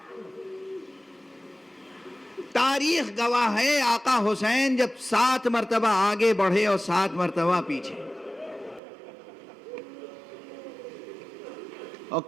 تاریخ گواہ ہے آقا حسین جب 7 مرتبہ آگے بڑھے اور 7 مرتبہ پیچھے، اور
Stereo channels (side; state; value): left; drops out; at 8.8 s